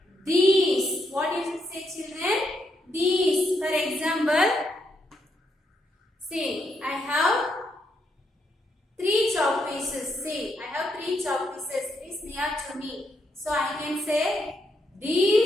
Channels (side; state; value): both; normal; correlation 0.79